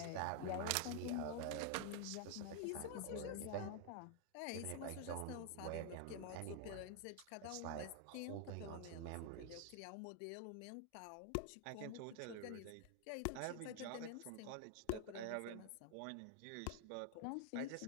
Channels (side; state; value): both; different; correlation 0.00